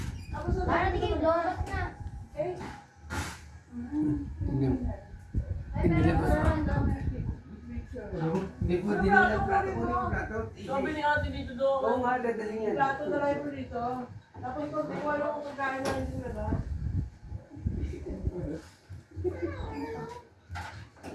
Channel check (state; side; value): identical; both; correlation 1.00